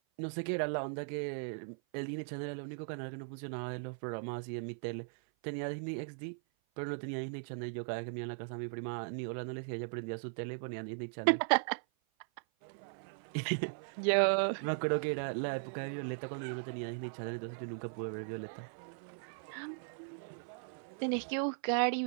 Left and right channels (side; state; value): left; silent; 52 dB below the other